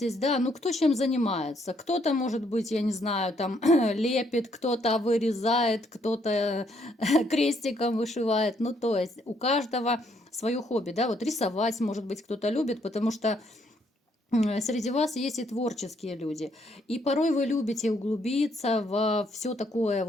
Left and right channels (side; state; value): both; normal; correlation 0.71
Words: да, ну кто чем занимается. Кто-то, может быть, я не знаю, там лепит, кто-то вырезает, кто-то крестиком вышивает. Ну, то есть у каждого свое хобби, да, вот рисовать, может быть, кто-то любит, потому что среди вас есть и творческие люди. И порой вы любите углубиться во все такое,